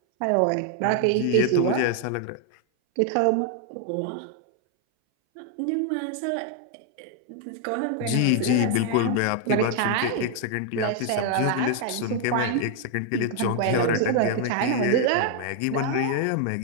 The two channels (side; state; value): both; different; correlation 0.00